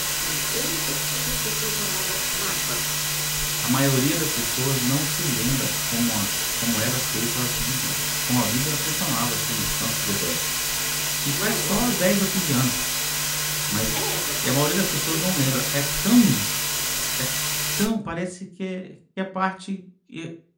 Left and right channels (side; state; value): both; identical; correlation 1.00